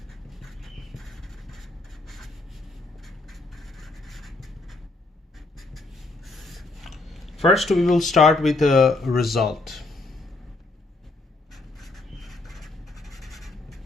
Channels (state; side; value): quieter; right; 3.2 dB